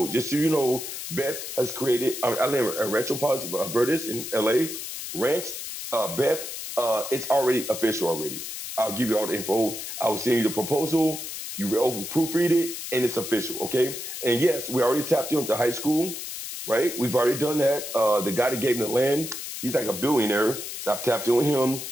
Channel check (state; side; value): noise; left; hiss, 7 dB below the sound